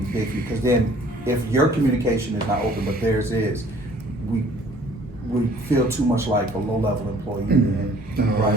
big for you, because then if your communication is not open, but theirs is, we feel too much like a low-level employee. And, right,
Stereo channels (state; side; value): normal; both; correlation 0.55